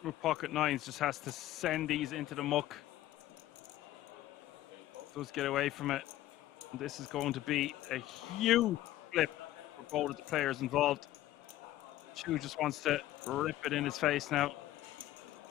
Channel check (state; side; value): quieter; right; 14.6 dB